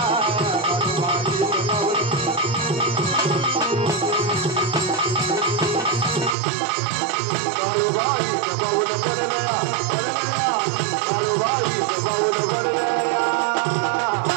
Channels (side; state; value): left; drops out; at 6.4 s